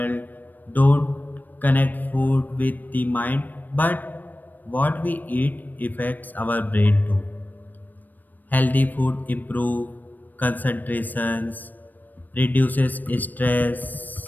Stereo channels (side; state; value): right; late; 0.087 ms